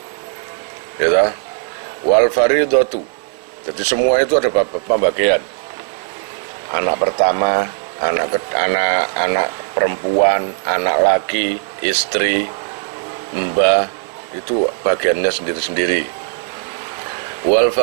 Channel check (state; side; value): silent; left; 64 dB below the other